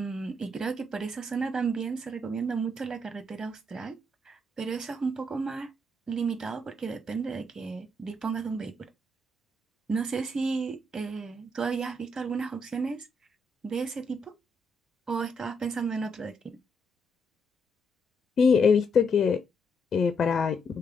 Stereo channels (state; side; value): normal; both; correlation 0.77